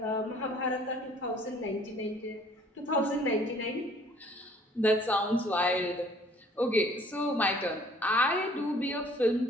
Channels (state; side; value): normal; both; correlation 0.56